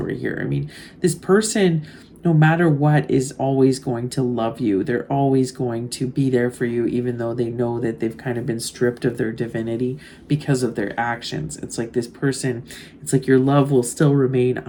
here. I mean, this person, no matter what, is always going to love you. They're always going to be there for you, even though they know that they've kind of been stripped of their divinity because of their actions. It's like this person, it's like your love will still remain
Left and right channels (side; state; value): both; identical; correlation 1.00